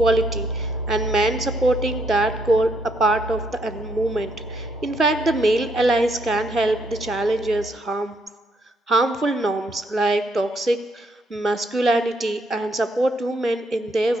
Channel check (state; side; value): normal; both; correlation 0.72